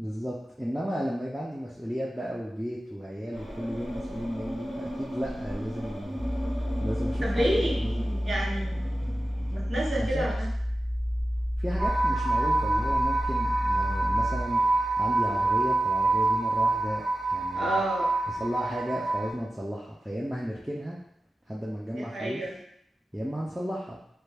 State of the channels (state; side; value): normal; both; correlation 0.94